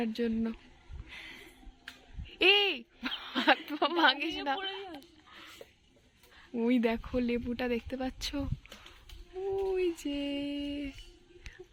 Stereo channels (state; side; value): identical; both; correlation 1.00